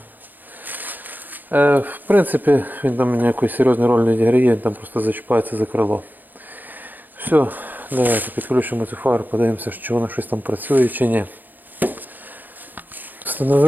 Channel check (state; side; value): late; left; 0.086 ms